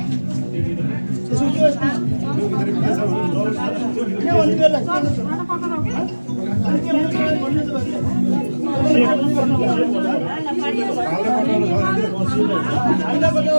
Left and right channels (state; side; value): inverted; both; correlation -1.00